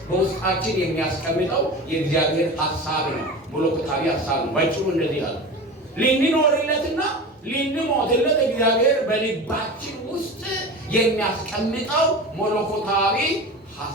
በውስጣችን የሚያስቀምጠው የእግዚአብሔር ሀሳብ ነው። መለኮታዊ ሀሳብ ነው። ባጭሩ እንደዚህ አለ። ልንኖርለትና ልንሞትለት እግዚአብሔር በልባችን ውስጥ የሚያስቀምጠው መለኮታዊ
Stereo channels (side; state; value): both; normal; correlation 0.31